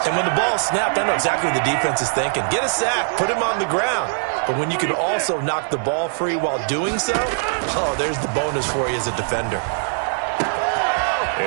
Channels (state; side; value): silent; left; digital silence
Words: And when the ball snapped, I know exactly what the defense is thinking. Get a sack, put him on the ground. But when you can also knock the ball free while doing so, oh, there's the bonus for you as a defender.